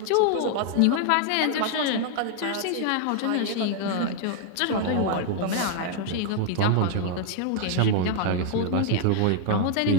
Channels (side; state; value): both; different; correlation 0.00